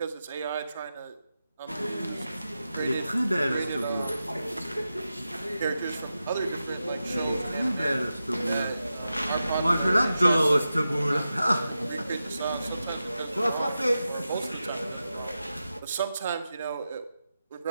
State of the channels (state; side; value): inverted; both; correlation -0.91